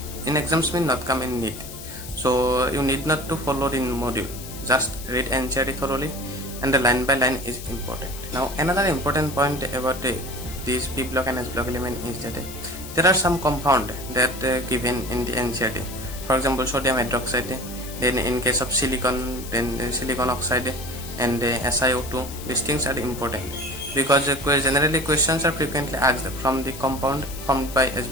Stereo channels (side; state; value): left; noise; hiss, 13 dB below the sound